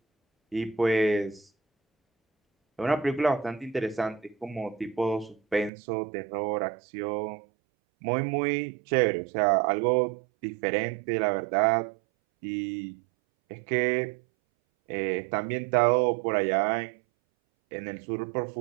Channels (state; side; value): drops out; left; at 5.7 s